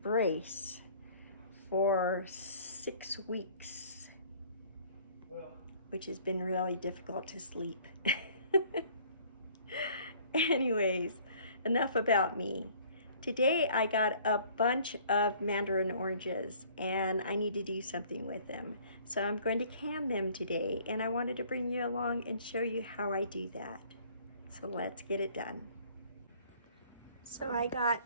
for 6 weeks, which has been really difficult to sleep. Anyways, enough about me. Today I got a bunch of mandarin oranges and I need to do something with them. So I'm going to can them today, and I wanted to bring you along and show you how I do that. So let's get it done. So I got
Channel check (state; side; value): inverted; both; correlation -0.55